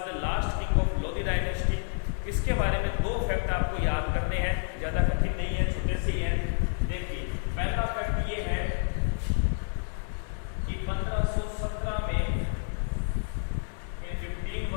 the last king of Lodhi dynasty. इसके बारे में 2 फैक्ट आपको याद करने हैं, ज़्यादा कठिन नहीं है, छोटे से ही हैं। देखिए, पहला फैक्ट ये है कि 1517 में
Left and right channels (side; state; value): right; silent; 56 dB below the other